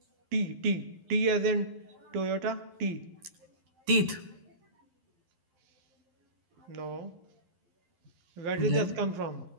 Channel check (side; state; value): left; late; 12 ms